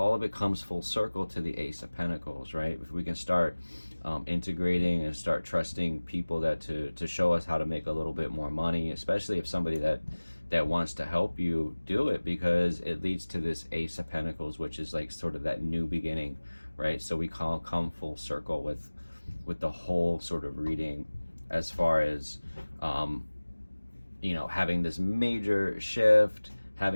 of it comes full circle to the Ace of Pentacles, right? If we can start integrating and start trusting people that to show us how to make a little bit more money, especially if somebody that wants to help you do it, because it leads to this Ace of Pentacles, which is like sort of that new beginning, right? So we come full circle with the whole sort of reading, as far as having this major shift,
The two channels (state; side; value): inverted; both; correlation -1.00